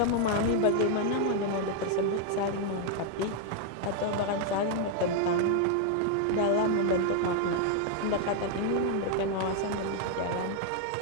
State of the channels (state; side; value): different; both; correlation 0.00